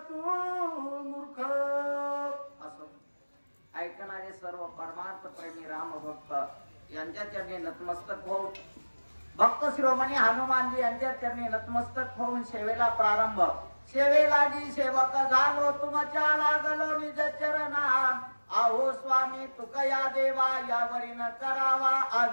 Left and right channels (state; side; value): inverted; both; correlation -1.00